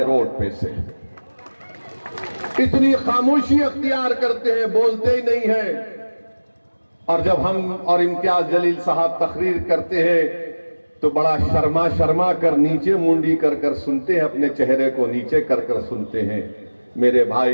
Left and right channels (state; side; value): inverted; both; correlation -1.00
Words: रोड पे से। इतनी खामोशी अख्तियार करते हैं, बोलते ही नहीं है। और जब हम और इम्तियाज जलील साहब तकरीर करते हैं तो बड़ा शर्मा शर्मा कर नीचे मुंडी कर कर सुनते हैं, अपने चेहरे को नीचे कर कर सुनते हैं। मेरे